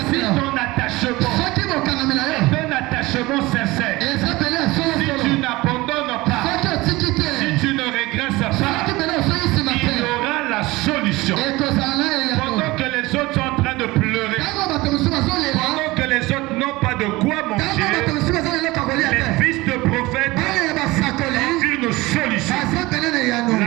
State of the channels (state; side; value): quieter; left; 20.8 dB